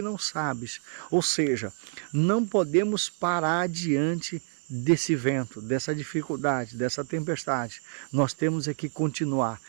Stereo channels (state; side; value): silent; left; 59 dB below the other